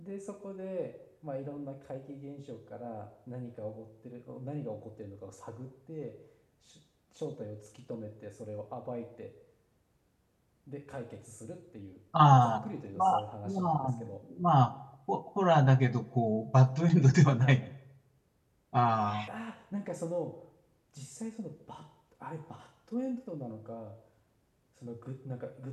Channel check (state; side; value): identical; both; correlation 1.00